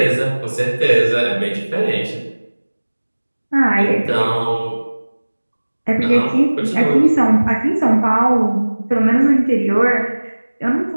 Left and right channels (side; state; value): both; inverted; correlation -1.00